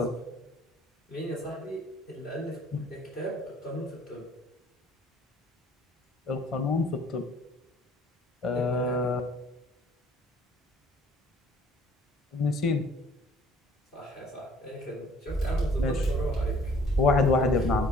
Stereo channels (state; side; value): normal; both; correlation 0.56